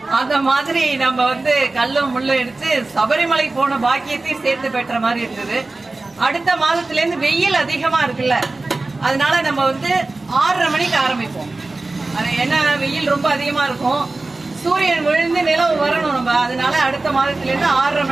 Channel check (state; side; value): quieter; left; 3.2 dB